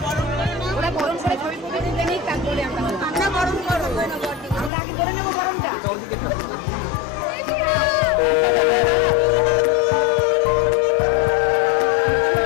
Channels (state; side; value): drops out; right; at 4.7 s